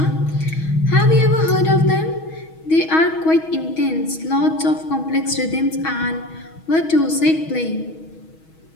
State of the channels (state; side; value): late; right; 6.3 ms